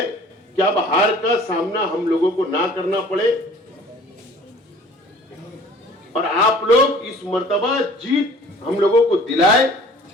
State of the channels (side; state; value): both; normal; correlation 0.49